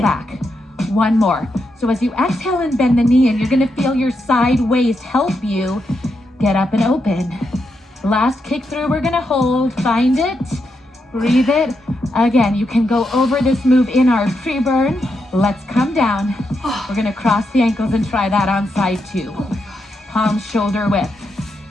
One more. So as you exhale and bend the knee, and you're gonna feel your side waist help you get up and open. Last kick through, we're gonna hold, find it, breathe it. Again, you can go over this move in our pre-burn. Let's come down. We're gonna cross the ankles and try that on side two. Palms shoulder width.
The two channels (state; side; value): normal; both; correlation 0.83